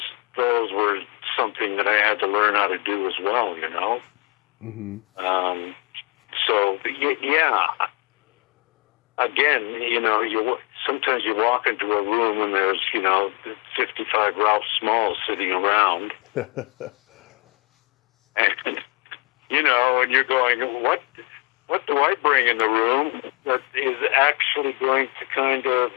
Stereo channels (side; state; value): right; quieter; 26.7 dB